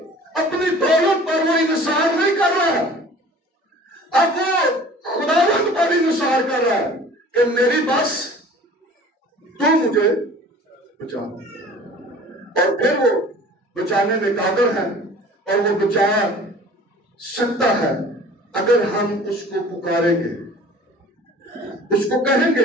अपनी दौलत पर वो इंसार नहीं कर रहा है, अब वो खुदावंद पर इंसार कर रहा है कि मेरी बस तू मुझे बचा। और फिर वो बचाने में काबिल है और वो बचा सकता है अगर हम उसको पुकारेंगे, उसको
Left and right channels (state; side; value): normal; both; correlation 0.46